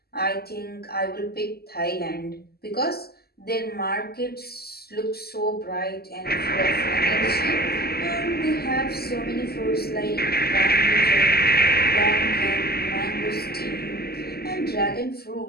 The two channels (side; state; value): right; late; 0.46 ms